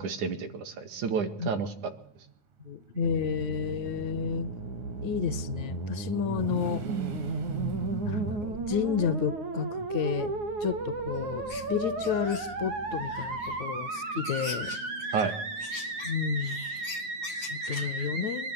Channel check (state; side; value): late; left; 9.5 ms